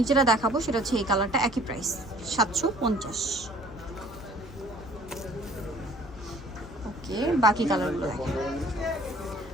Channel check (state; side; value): normal; both; correlation 0.53